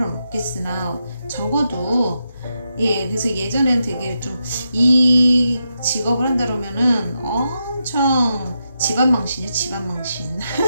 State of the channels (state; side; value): inverted; both; correlation -0.85